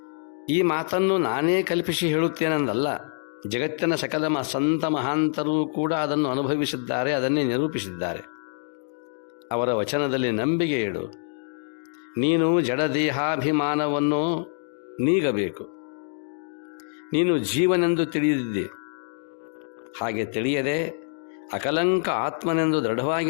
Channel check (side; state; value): right; silent; digital silence